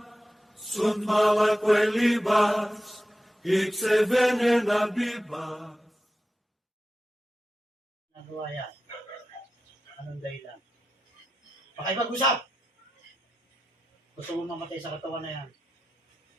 sunt mala quelibas, ixe venena bibas. Nagawa yan. Anong dahilan? Pakipag-usap! Gusto mo mamatay sa katawan na yan?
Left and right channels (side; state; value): both; normal; correlation 0.91